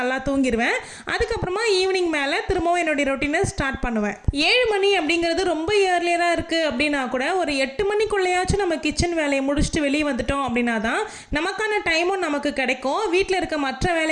தூங்கிடுவேன். அதுக்கப்புறமா ஈவினிங் மேலே திரும்பவும் என்னுடைய ரொட்டீனை ஸ்டார்ட் பண்ணுவேன். 7 மணி அப்படிங்கிறது ரொம்ப இயர்லியராக இருக்குது அப்படின்னா கூட ஒரு 8 மணிக்குள்ளேயாச்சும் நம்ம கிச்சன் வேலையை முடிச்சுட்டு வெளியே வந்துட்டோம் அப்படின்னா தான் நமக்கான டைமும் நமக்கு கிடைக்கும். வீட்டில் இருக்க மற்ற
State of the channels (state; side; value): identical; both; correlation 1.00